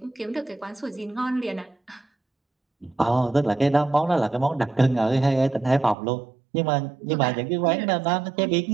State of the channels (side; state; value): left; drops out; at 6.0 s